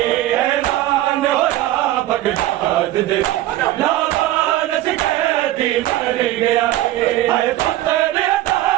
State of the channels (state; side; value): quieter; left; 15.0 dB